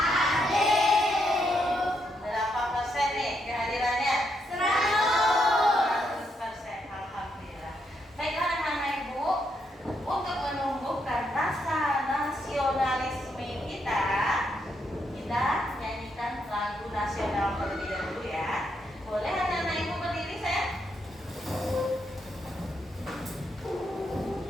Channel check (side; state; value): both; normal; correlation 0.79